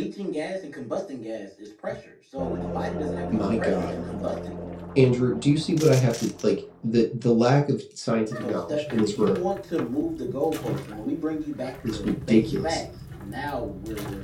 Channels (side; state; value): both; identical; correlation 1.00